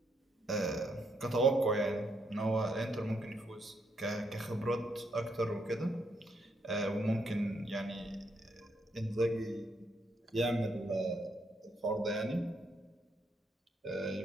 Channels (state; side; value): normal; both; correlation 0.76